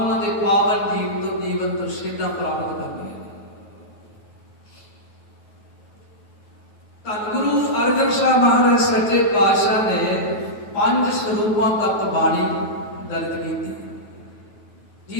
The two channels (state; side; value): late; right; 9.3 ms